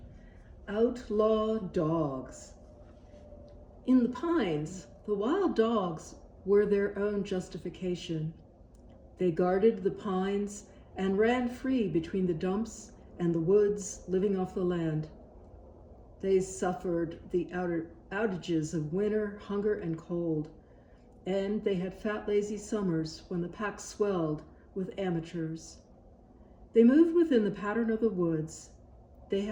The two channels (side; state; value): both; identical; correlation 1.00